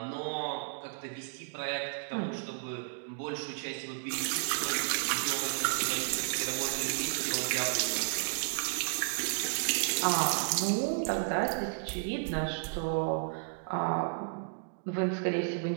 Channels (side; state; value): left; silent; digital silence